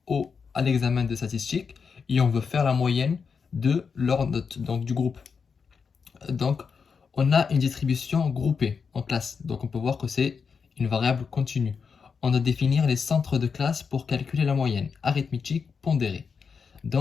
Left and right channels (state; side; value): quieter; right; 5.8 dB